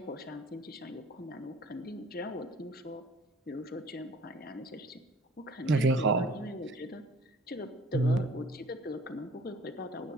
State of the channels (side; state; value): both; normal; correlation 0.51